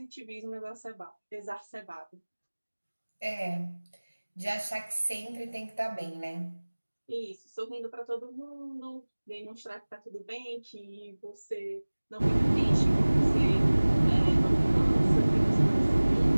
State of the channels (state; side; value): inverted; both; correlation -1.00